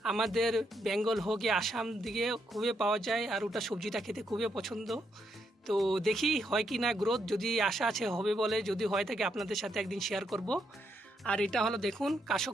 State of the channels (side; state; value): both; normal; correlation 0.78